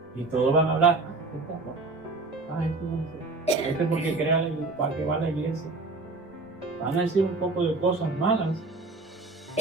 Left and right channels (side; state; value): left; quieter; 3.5 dB